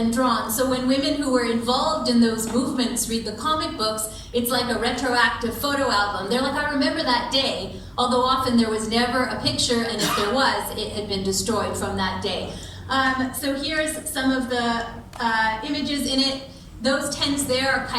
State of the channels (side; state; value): both; identical; correlation 1.00